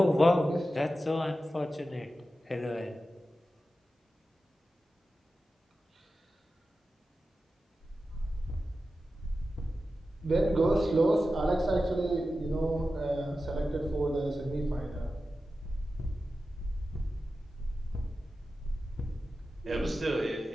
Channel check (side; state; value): both; normal; correlation 0.93